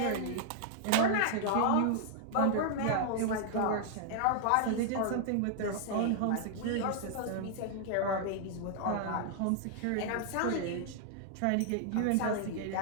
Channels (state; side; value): different; both; correlation 0.00